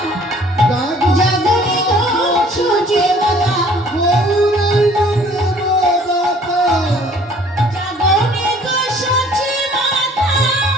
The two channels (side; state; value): both; normal; correlation 0.55